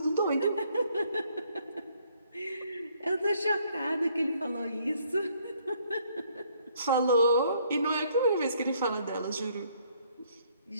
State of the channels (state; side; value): inverted; both; correlation -0.66